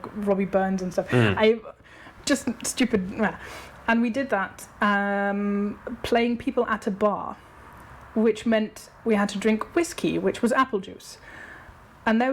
Robbie Burns and stuff. Just stupid. And we did that, playing people at a bar. which meant we had to drink whiskey, which was apple juice. And there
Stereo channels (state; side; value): identical; both; correlation 1.00